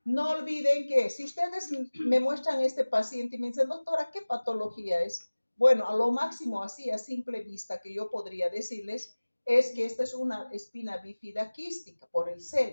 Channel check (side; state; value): both; inverted; correlation -1.00